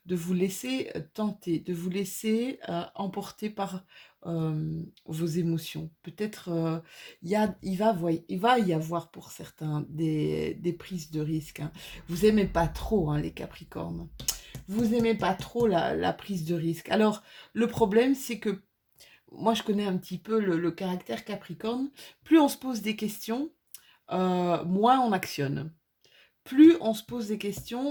de vous laisser tenter, de vous laisser emporter par vos émotions. Peut-être il va y avoir pour certains des prises de risque, hein. Vous aimez pas trop, hein, les Capricornes. Vous aimez pas trop la prise de risque. Alors, le problème, c'est que moi, je connais un petit peu le caractère Capricorne. Plus on se pose des questions, moins on actionne. Plus on se pose des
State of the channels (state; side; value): identical; both; correlation 1.00